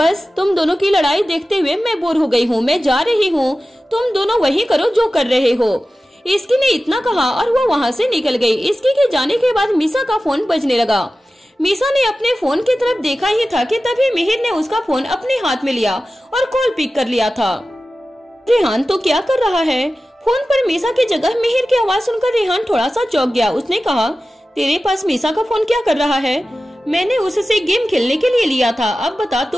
तुम दोनों की लड़ाई देखते हुए मैं बोर हो गई हूँ, मैं जा रही हूँ, तुम दोनों वही करो जो कर रहे हो। इसकी ने इतना कहा और वो वहाँ से निकल गई। इसकी के जाने के बाद मीसा का फोन बजने लगा। मीसा ने अपने फोन की तरफ देखा ही था कि तभी मिहिर ने उसका फोन अपने हाथ में लिया और कॉल पिक कर लिया था। रेहान तो क्या कर रहा है? फोन पर मीसा की जगह मिहिर की आवाज सुनकर रेहान थोड़ा सा चौंक गया। उसने कहा, तेरे पास मीसा का फोन क्या कर रहा है? मैंने उससे गेम खेलने के लिए लिया था, अब बता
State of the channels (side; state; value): both; normal; correlation 0.95